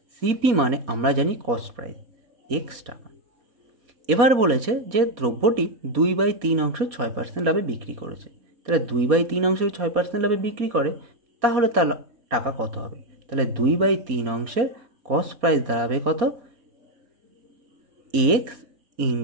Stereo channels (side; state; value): left; late; 4.1 ms